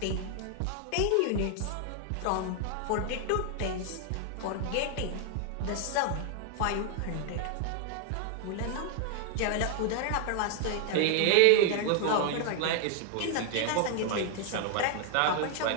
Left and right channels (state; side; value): different; both; correlation 0.00